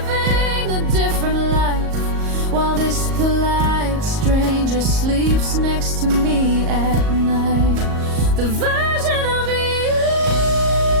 a different life, while this polite stranger sleeps next to me at night. The version of you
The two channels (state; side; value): late; left; 38 ms